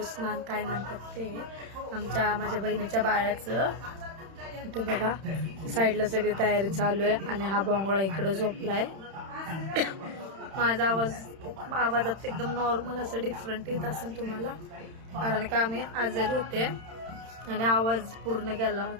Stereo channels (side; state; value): left; late; 31 ms